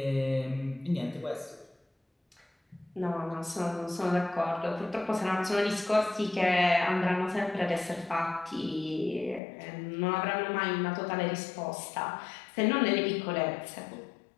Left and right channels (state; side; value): drops out; right; at 9.4 s